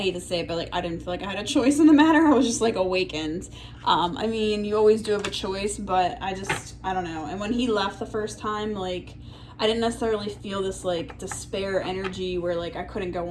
to say it, but like, I didn't feel like I had a choice in the matter. I was just like awakened. I mean, you always do have a choice, but I don't know. And when he left the first time, like, I didn't necessarily feel this like despair energy where like I couldn't go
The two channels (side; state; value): both; identical; correlation 1.00